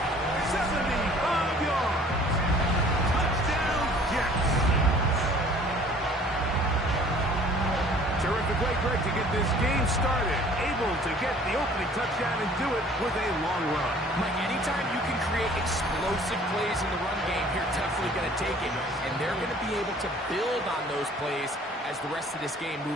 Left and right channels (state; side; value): normal; both; correlation 0.52